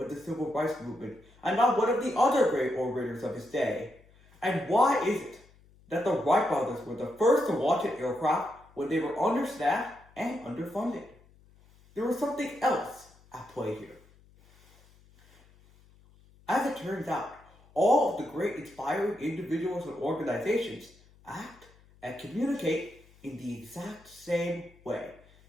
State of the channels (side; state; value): left; noise; hum, 28 dB below the sound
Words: the civil rights movement and not one of the other great orators of his day? And why is it that the Wright brothers were the first to launch an aircraft when they were understaffed and underfunded? There was something else at play here. As it turns out, all of the great inspiring individuals and organizations act and communicate in the exact same way.